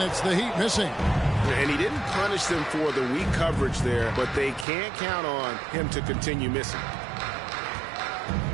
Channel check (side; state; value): left; drops out; at 4.7 s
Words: it's the Heat missing. And he didn't punish them for the weak coverage there, but they can't count on him to continue missing.